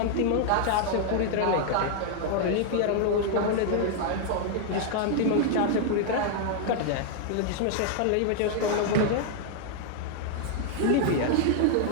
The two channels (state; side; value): different; both; correlation 0.00